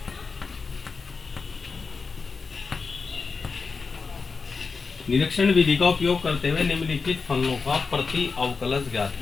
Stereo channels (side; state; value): right; quieter; 4.7 dB